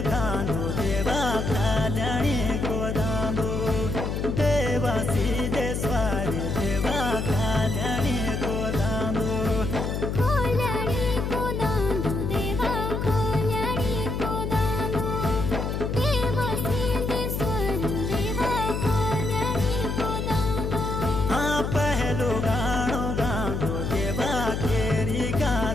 दांदो देवा कल्याणी को दांदो देवा सिद्धेश्वर देवा कल्याणी को दांदो कल्याणी को दांदो देवा कल्याणी को दांदो देवा सिद्धेश्वर देवा कल्याणी को दांदो हाँ पहलो गाणो गांदो देवा केरी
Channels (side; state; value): left; noise; hum, 2 dB below the sound